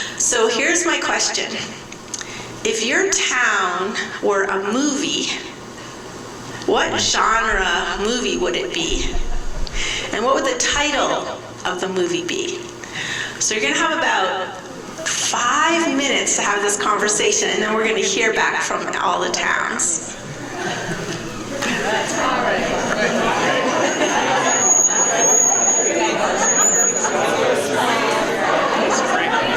So here's my question. If your town were a movie, what genre movie would it be? And what would the title of the movie be? So you're going to have about 5 minutes to have this conversation, and then we're going to hear back from all the towns.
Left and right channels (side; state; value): both; identical; correlation 1.00